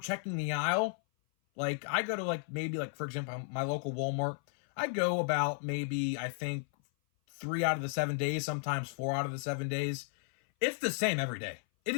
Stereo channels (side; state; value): right; silent; 55 dB below the other